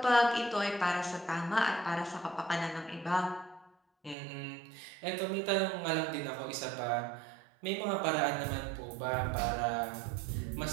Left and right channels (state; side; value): drops out; left; at 4.2 s